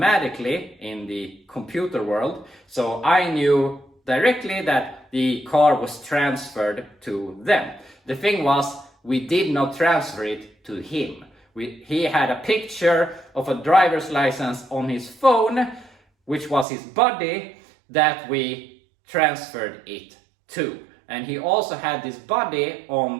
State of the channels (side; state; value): left; drops out; at 16.7 s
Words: in the computer world. So I knew directly that the car was transferred to them. The thing was, we did not transfer it to him. He had a picture of a driver's license on his phone, which was his buddy, that we transferred it to. And he also had this buddy on